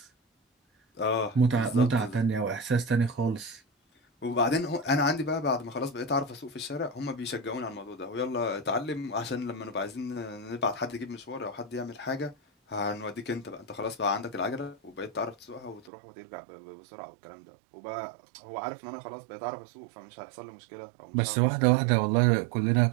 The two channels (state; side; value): drops out; left; at 15.9 s